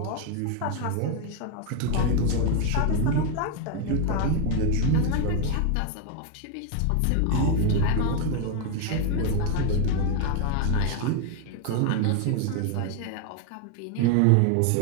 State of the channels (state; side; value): different; both; correlation 0.01